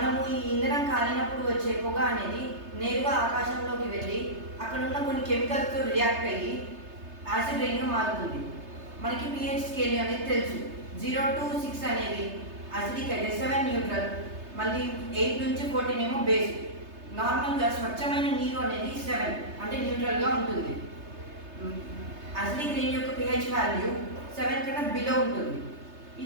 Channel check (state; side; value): late; left; 3.3 ms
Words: ఈ ఇంధనం కాలినప్పుడు వచ్చే పొగ అనేది నేరుగా ఆకాశంలోకి వెళ్ళి అక్కడ ఉన్న కొన్ని కెమికల్స్తో రియాక్ట్ అయ్యి యాసిడ్ రైన్గా మారుతుంది. మనకి pH స్కేల్ అనేది తెలుసు. 0 to 6 అనేది అసిడిక్ అయితే, 7 న్యూట్రల్, మళ్ళీ 8 నుంచి 14 ఏమో బేస్. నార్మల్గా స్వచ్ఛమైన నీరు అనేది 7 అంటే న్యూట్రల్గా ఉంటుంది. అసిడిక్ రైన్ యొక్క pH వాల్యూ 7 కన్నా బిలో ఉంటుంది. ఈ